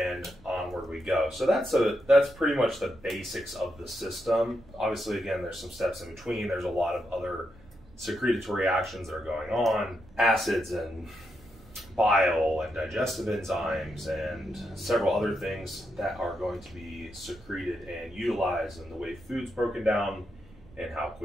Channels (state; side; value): noise; right; rumble, 23 dB below the sound